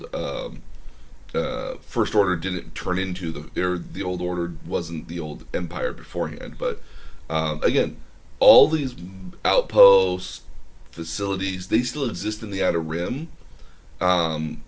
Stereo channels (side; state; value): both; identical; correlation 1.00